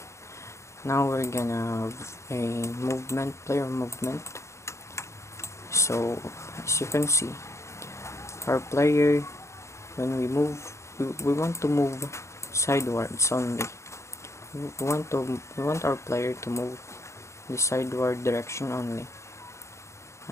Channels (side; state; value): right; late; 0.14 ms